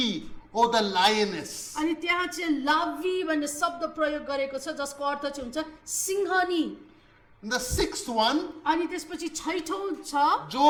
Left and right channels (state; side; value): identical; both; correlation 1.00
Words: or the lioness. अनि त्यहाँ चाहिँ लावी भन्ने शब्द प्रयोग गरेको छ जसको अर्थ चाहिँ हुन्छ सिंहनी And the sixth one, अनि त्यसपछि छैठौं छ